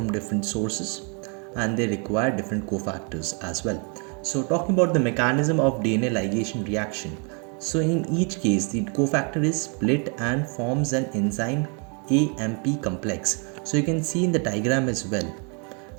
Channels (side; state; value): left; quieter; 36.5 dB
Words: different sources, and they require different cofactors as well. So talking about the mechanism of DNA ligation reaction, so in each case the cofactor is split and forms an enzyme AMP complex. So you can see in the diagram as well.